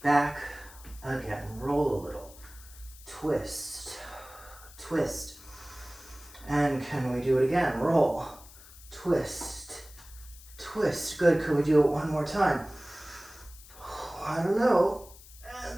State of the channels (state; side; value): noise; left; hiss, 20 dB below the sound